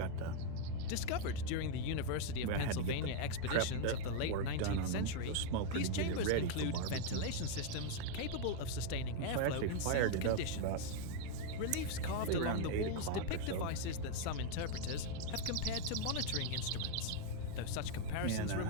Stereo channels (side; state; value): both; different; correlation 0.00